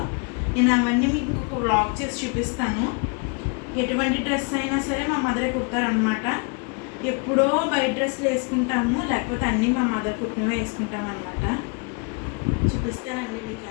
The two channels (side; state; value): right; quieter; 35.1 dB